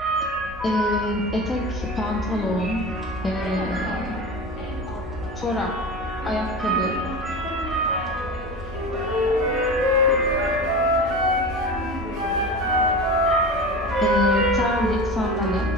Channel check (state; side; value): normal; both; correlation 0.30